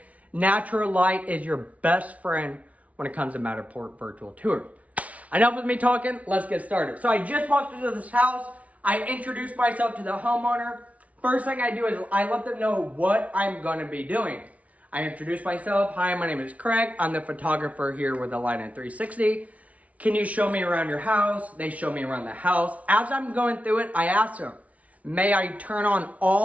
natural light is your best friend when it comes to Matterport virtual tours. Enough with me talking, let's get started. So I just walked into this house. I introduced myself to the homeowner. First thing I do is I let them know what I'm gonna be doing. I introduce myself. Hi, my name is Craig. I'm the photographer here with the Line 360. Can you show me around your house? They show me around the house. As I'm going through it, I ask them, may I turn on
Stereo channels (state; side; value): late; left; 0.067 ms